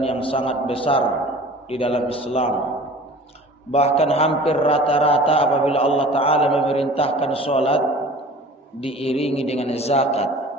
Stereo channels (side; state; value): both; normal; correlation 0.44